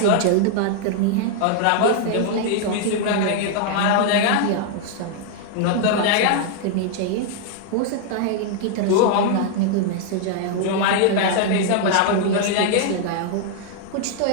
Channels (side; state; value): both; different; correlation -0.01